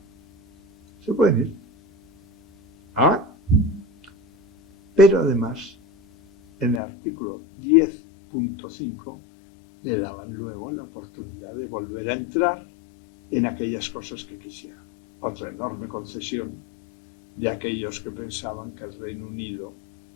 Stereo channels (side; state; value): right; drops out; at 6.8 s